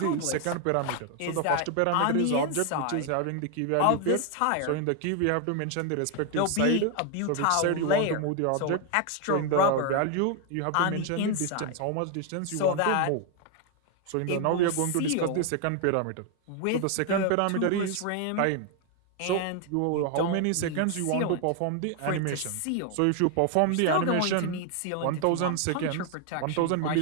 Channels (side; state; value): both; different; correlation 0.01